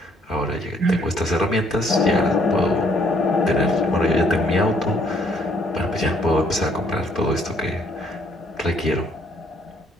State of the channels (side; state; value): both; normal; correlation 0.66